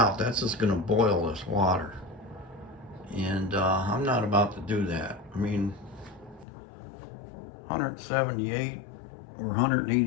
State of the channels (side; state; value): right; drops out; at 6.5 s